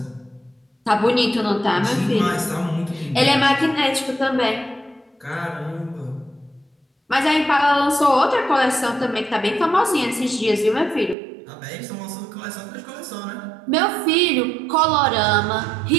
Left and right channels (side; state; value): left; drops out; at 11.2 s